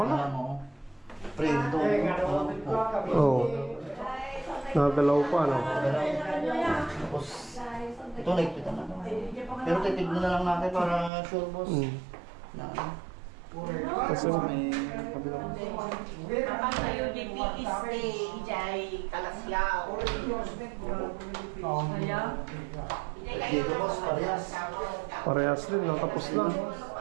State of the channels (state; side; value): drops out; left; at 11.1 s